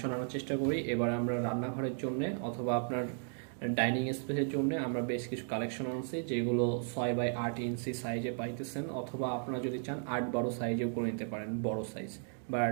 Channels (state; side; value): silent; left; 54 dB below the other